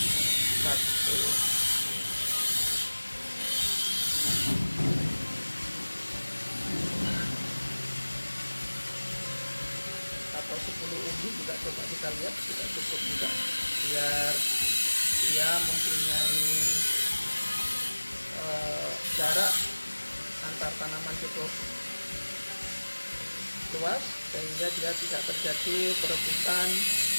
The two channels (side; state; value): both; inverted; correlation -1.00